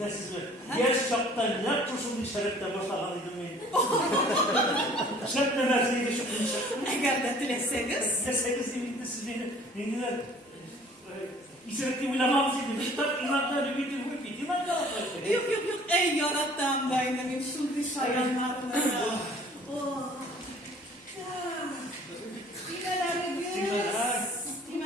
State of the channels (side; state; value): both; normal; correlation 0.52